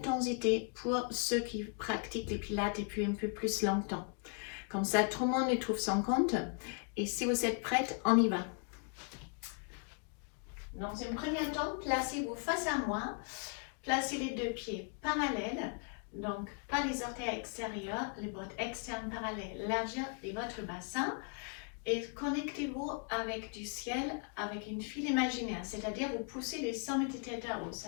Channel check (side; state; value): right; quieter; 39.4 dB